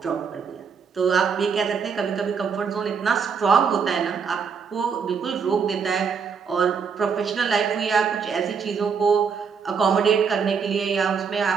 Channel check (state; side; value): quieter; left; 6.1 dB